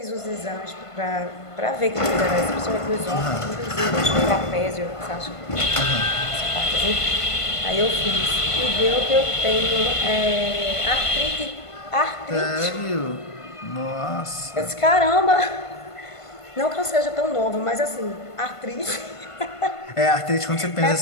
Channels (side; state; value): right; late; 1.5 ms